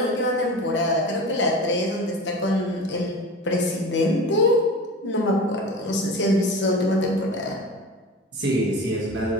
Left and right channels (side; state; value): both; normal; correlation 0.33